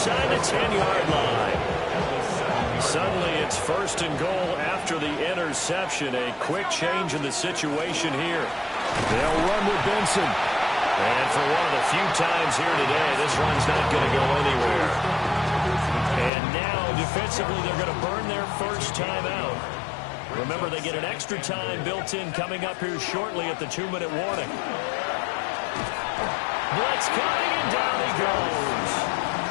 the 10-yard line. Suddenly it's 1st and goal after the interception. A quick change in the situation here. They'll run with Benson. And for one of the few times here today, this run's not going to go anywhere. And now, defensively, they're going to burn their first time out. Remember, they get an extra time built in coming up here shortly at the 2-minute warning. Blitz coming, and down he goes.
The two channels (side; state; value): right; drops out; at 16.3 s